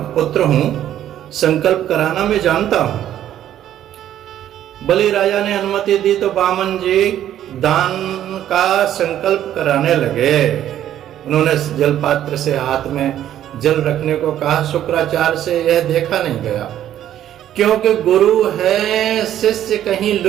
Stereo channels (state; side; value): quieter; left; 11.5 dB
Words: पुत्र हूं, संकल्प कराना मैं जानता हूं। बलि राजा ने अनुमति दी तो वामन जी दान का संकल्प कराने लगे। उन्होंने जल पात्र से हाथ में जल रखने को कहा। शुक्राचार्य से यह देखा नहीं गया, क्योंकि गुरु है, शिष्य कहीं